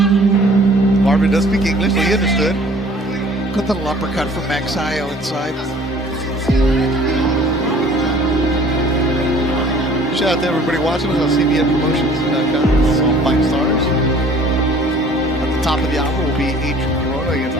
Marvin does speak English, so he understood. Good little uppercut from Magsayo inside. Shout out to everybody watching us on CBNpromotions.com. Also on Fight Stars. At the top of the hour will be Adrian Corona against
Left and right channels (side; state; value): both; normal; correlation 0.52